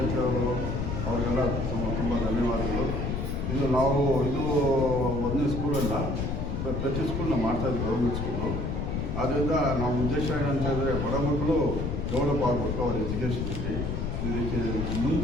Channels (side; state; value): left; noise; rumble, 2 dB below the sound